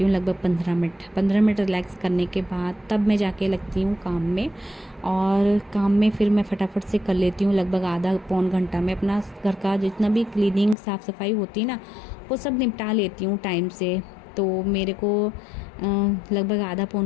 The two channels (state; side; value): drops out; right; at 10.8 s